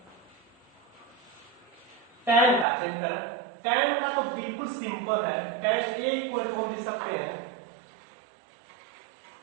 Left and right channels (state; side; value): drops out; left; at 2.7 s